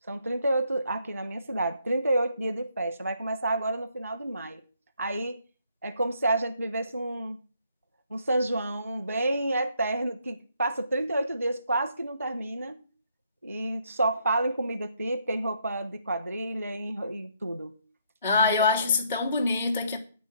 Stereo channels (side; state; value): both; inverted; correlation -0.71